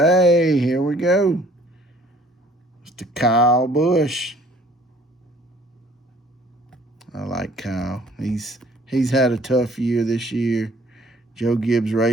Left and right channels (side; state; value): both; normal; correlation 0.56